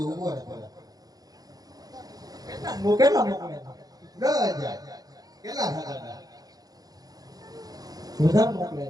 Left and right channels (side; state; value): left; late; 0.18 ms